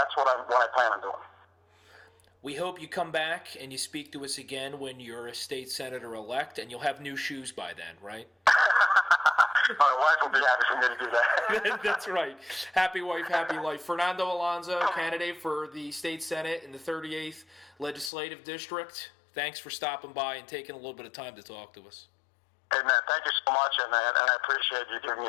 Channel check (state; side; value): drops out; right; at 18.1 s